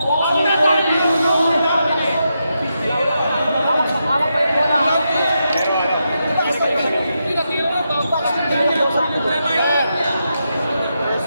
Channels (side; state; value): both; inverted; correlation -0.85